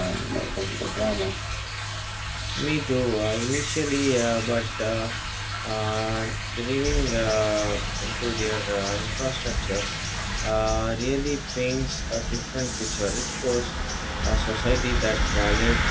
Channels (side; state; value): both; identical; correlation 1.00